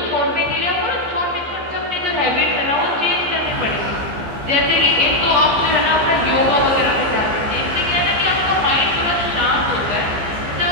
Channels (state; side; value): late; left; 15 ms